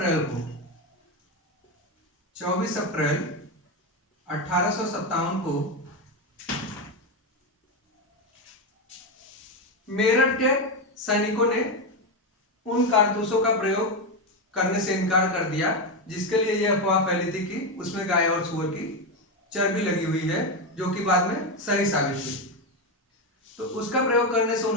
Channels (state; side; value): normal; both; correlation 0.11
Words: 1857 को मेरठ के सैनिकों ने उन कारतूसों का प्रयोग करने से इनकार कर दिया जिसके लिए यह अफवाह फैली थी कि उसमें गाय और सूअर की चर्बी लगी हुई है, जो कि बाद में सही साबित हुई। तो उसका प्रयोग करने से